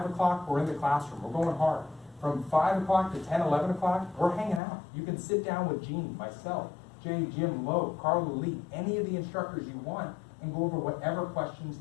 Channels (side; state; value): right; drops out; at 4.6 s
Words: o'clock, we're in the classroom. We're going hard. From 5 o'clock to 10, 11 o'clock, we're hanging out. You can sit down with Gene, myself, Jay, Jim, Lowe, Carla Lee, any of the instructors you want, and go over whatever questions